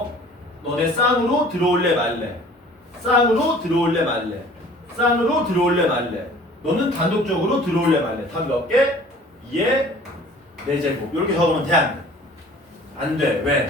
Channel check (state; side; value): normal; both; correlation 0.49